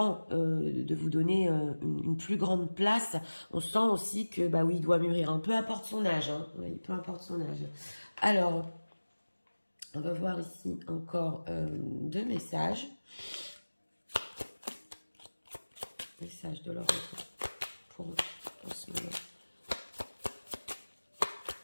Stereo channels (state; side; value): inverted; both; correlation -1.00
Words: de vous donner une plus grande place, on sent aussi que, bah oui, il doit mûrir, hein, peu importe son âge, hein, oui, peu importe son âge. Alors, on va voir ici encore 2 messages. Message de leur pour eux, en ce moment.